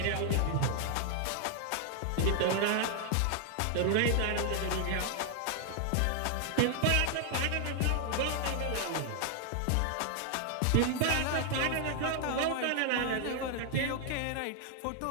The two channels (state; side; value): different; both; correlation 0.00